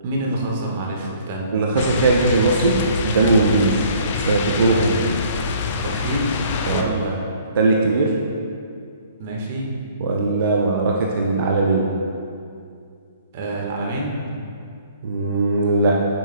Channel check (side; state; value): both; inverted; correlation -0.57